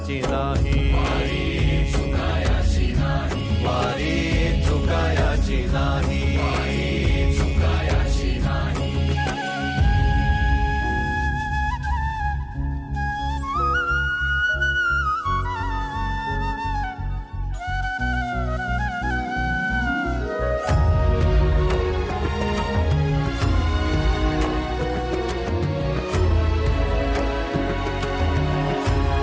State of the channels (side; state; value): both; identical; correlation 1.00